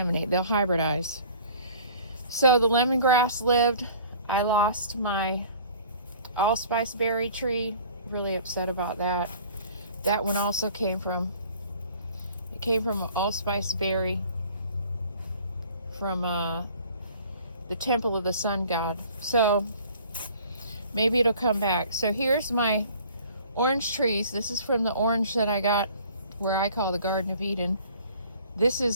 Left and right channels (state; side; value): inverted; both; correlation -0.50